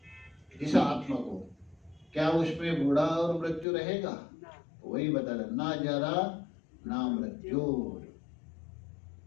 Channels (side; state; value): right; drops out; at 3.7 s